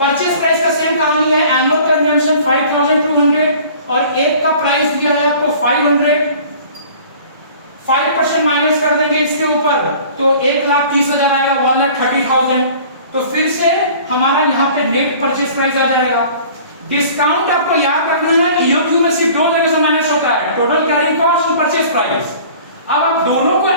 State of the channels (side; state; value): both; inverted; correlation -0.47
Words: price का सेम कहानी है, एनुअल कंजम्पशन 5200 और एक का प्राइस दिया है आपको 500। 5% माइनस कर देंगे इसके ऊपर तो 1,30,000 आएगा, 1,30,000। तो फिर से हमारा यहाँ पे नेट परचेज प्राइस आ जाएगा। डिस्काउंट आपको याद रखना है, EOQ में सिर्फ दो जगह से माइनस होता है, टोटल कैरिंग कॉस्ट और परचेज प्राइस। अब आप दोनों को